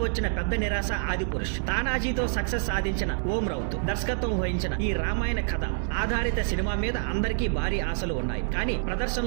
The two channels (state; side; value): silent; left; 60 dB below the other